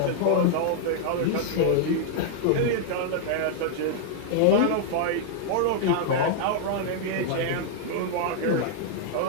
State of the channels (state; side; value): different; both; correlation -0.01